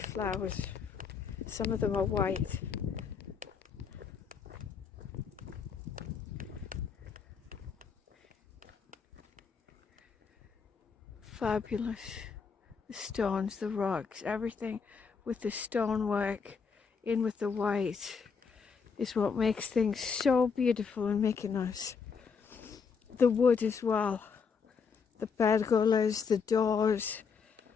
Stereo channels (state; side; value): quieter; right; 5.7 dB